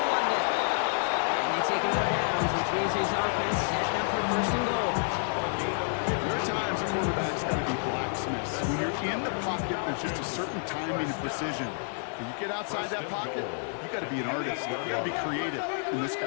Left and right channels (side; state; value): right; silent; 58 dB below the other